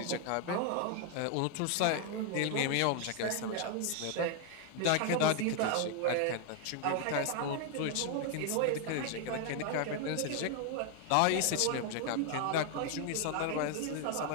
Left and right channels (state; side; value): different; both; correlation 0.01